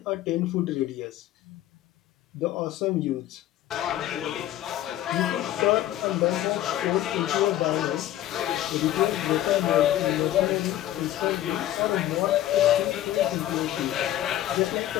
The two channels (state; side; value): quieter; right; 13.2 dB